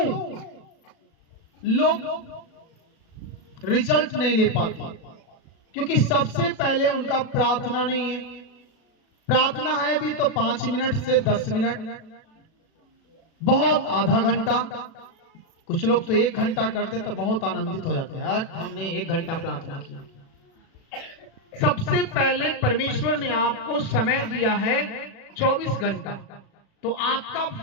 लोग रिजल्ट नहीं ले पाते? क्योंकि सबसे पहले उनका प्रार्थना नहीं है। प्रार्थना है भी तो 5 मिनट से 10 मिनट, बहुत आधा घंटा, कुछ लोग तो 1 घंटा करते तो बहुत आनंदित हो जाते हैं, यार हमने 1 घंटा प्रार्थना किया। सबसे पहले परमेश्वर ने आपको समय दिया है 24 घंटा, तो आपका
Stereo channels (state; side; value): late; right; 37 ms